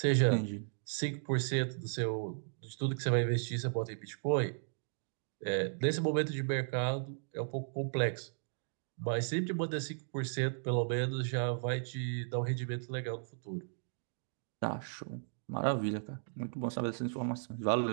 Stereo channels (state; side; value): silent; left; digital silence